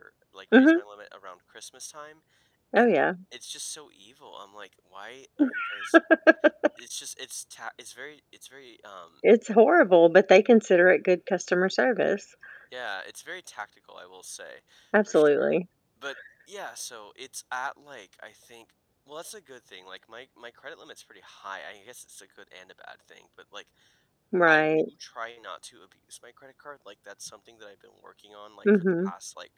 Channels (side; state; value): both; identical; correlation 1.00